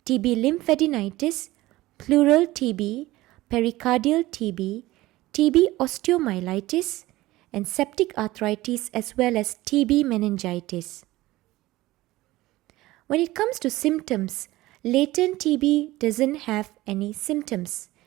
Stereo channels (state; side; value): quieter; left; 17.9 dB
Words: TB lymphadenitis, pleural TB, pericardial TB, TB osteomyelitis, and septic arthritis, as well as TB meningitis. When it comes to symptoms, latent TB doesn't have any symptoms.